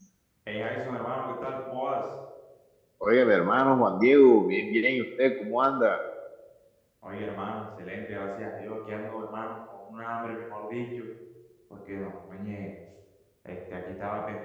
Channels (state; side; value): identical; both; correlation 1.00